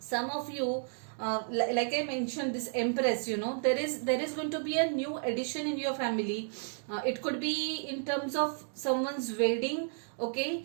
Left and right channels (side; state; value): left; silent; 56 dB below the other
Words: of you, like I mentioned, this Empress, there is going to be a new addition in your family. It could be in terms of someone's wedding,